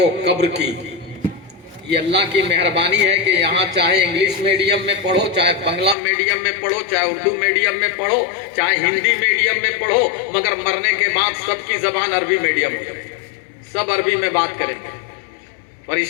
कब्र की। ये अल्लाह की मेहरबानी है कि यहाँ चाहे इंग्लिश मीडियम में पढ़ो, चाहे बांग्ला मीडियम में पढ़ो, चाहे उर्दू मीडियम में पढ़ो, चाहे हिंदी मीडियम में पढ़ो, मगर मरने के बाद सबकी जबान अरबी मीडियम हो जाए, सब अरबी में बात करेंगे।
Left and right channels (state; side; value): drops out; right; at 6.0 s